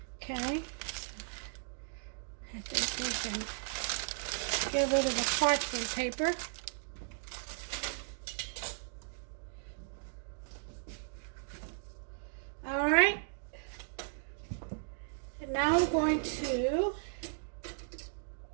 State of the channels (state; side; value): silent; left; digital silence